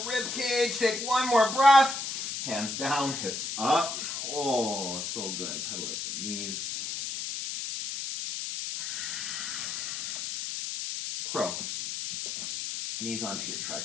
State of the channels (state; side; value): noise; left; hiss, 4 dB below the sound